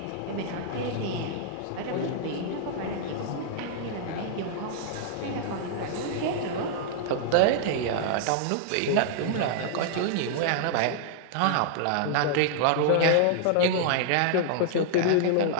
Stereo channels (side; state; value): both; different; correlation -0.01